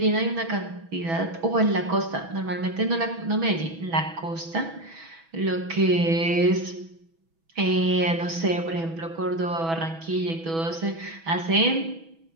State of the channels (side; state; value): left; late; 6.1 ms